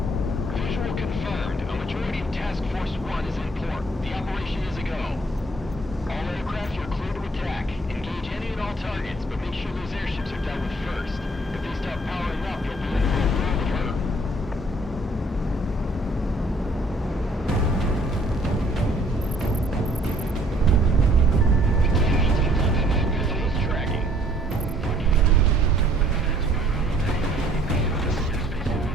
Visual confirmed. A majority of Task Force 1 is in port. The operation is a go. All aircraft, you're clear to attack. Engage any and all targets, but make sure those airships are dealt with first. If they start powering up, you'll be in for a world of hurt. Missiles tracking.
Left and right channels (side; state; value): both; normal; correlation 0.60